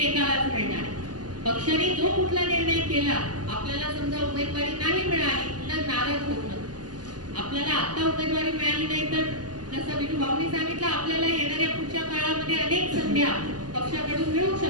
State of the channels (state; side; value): late; left; 0.70 ms